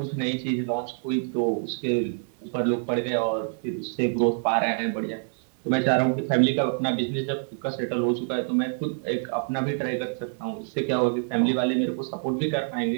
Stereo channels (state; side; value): silent; left; digital silence